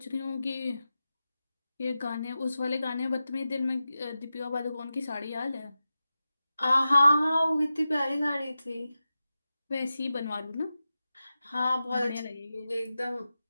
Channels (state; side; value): inverted; both; correlation -0.93